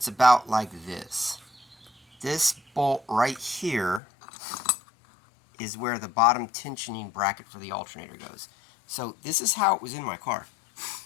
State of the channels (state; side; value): drops out; right; at 4.0 s